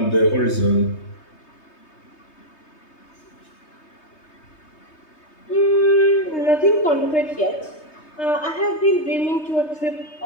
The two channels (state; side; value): late; right; 3.2 ms